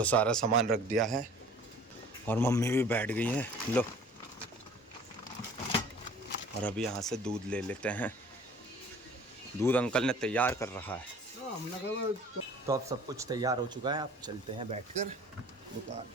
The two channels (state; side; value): normal; both; correlation 0.48